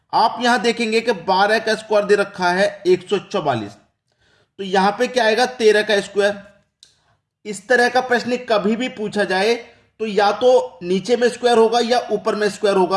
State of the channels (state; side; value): identical; both; correlation 1.00